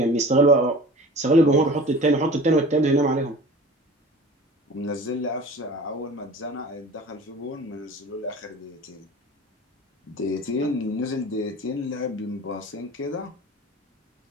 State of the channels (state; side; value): normal; both; correlation 0.40